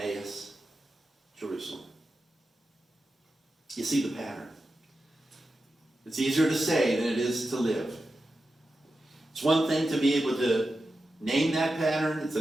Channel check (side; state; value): both; normal; correlation 0.91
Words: Jerusalem. You see the pattern. It's easier to say than it is to live. It's one thing to be able to name that pattern. It's